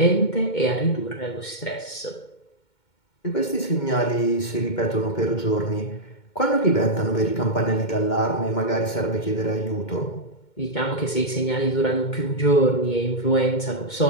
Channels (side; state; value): right; late; 2.2 ms